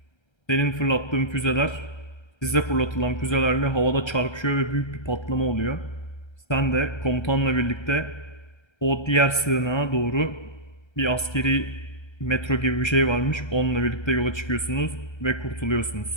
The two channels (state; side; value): late; right; 1.3 ms